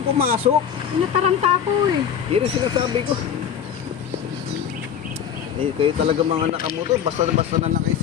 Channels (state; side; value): quieter; right; 8.5 dB